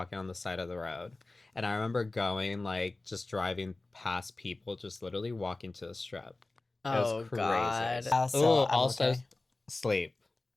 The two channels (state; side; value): quieter; right; 3.1 dB